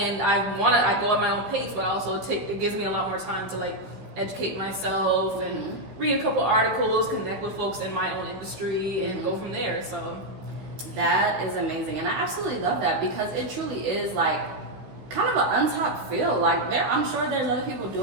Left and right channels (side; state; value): left; late; 15 ms